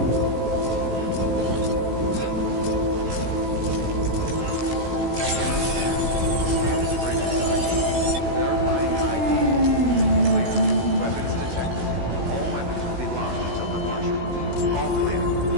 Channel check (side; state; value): left; late; 16 ms